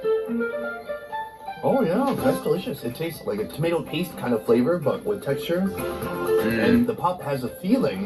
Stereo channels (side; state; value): both; identical; correlation 1.00